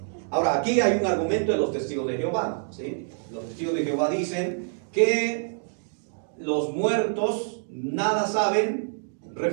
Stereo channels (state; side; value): silent; left; digital silence